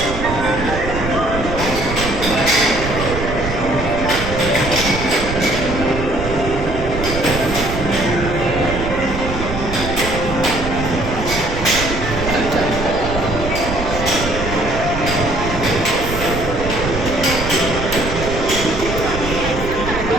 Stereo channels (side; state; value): right; noise; rumble, 6 dB below the sound